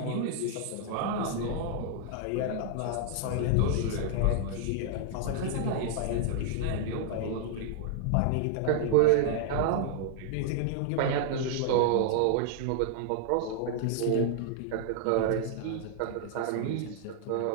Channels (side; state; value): both; different; correlation 0.00